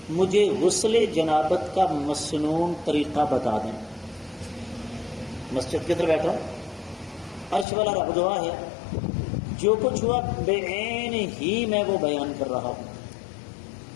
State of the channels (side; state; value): right; drops out; at 7.7 s